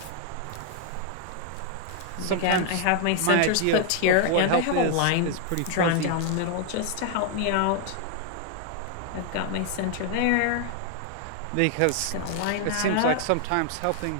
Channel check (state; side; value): different; both; correlation 0.00